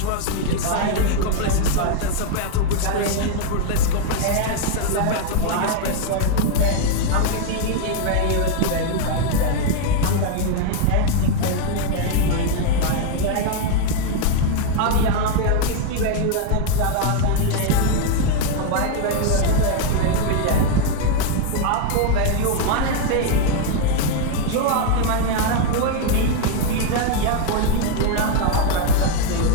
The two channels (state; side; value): different; both; correlation 0.00